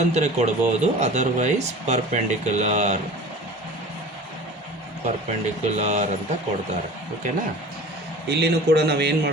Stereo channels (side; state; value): both; normal; correlation 0.41